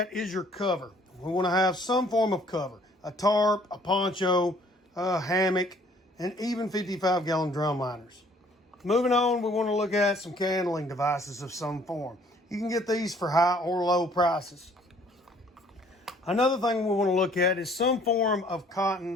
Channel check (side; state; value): both; normal; correlation 0.58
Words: is your cover. We want to have some form of cover, a tarp, a poncho, a hammock, and even 55-gallon drum liners. Moving on, we want to look at some candling devices of some form. You can get these for high or low prices. Another thing we want to look at is some form of